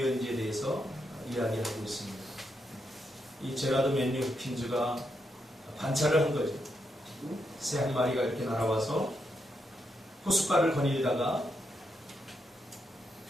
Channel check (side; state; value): both; normal; correlation 0.82